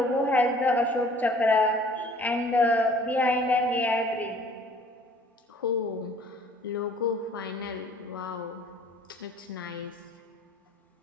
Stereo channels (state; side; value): normal; both; correlation 0.53